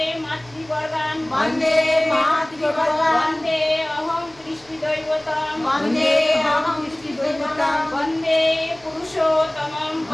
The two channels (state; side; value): noise; right; hum, 26 dB below the sound